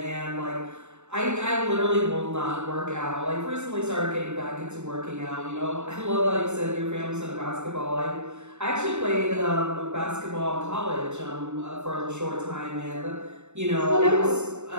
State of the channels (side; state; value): left; late; 0.83 ms